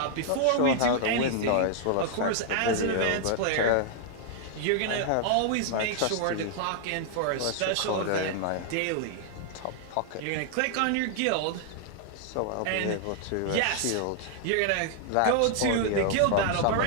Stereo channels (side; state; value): both; different; correlation 0.00